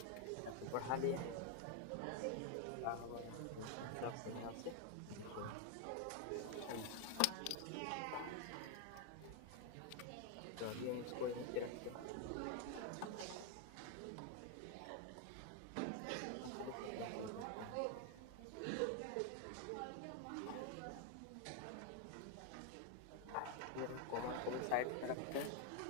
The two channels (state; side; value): different; both; correlation 0.01